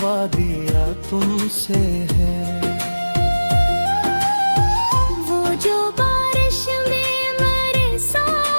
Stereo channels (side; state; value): both; inverted; correlation -1.00